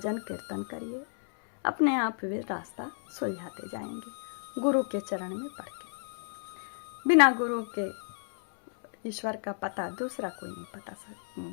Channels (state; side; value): silent; right; 57 dB below the other